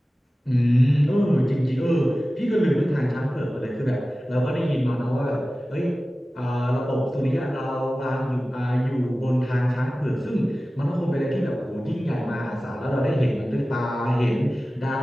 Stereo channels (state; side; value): normal; both; correlation 0.96